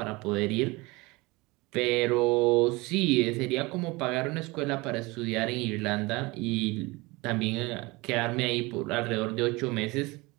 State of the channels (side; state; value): left; quieter; 23.6 dB